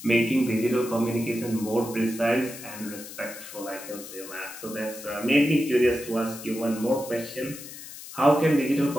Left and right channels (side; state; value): left; noise; hiss, 13 dB below the sound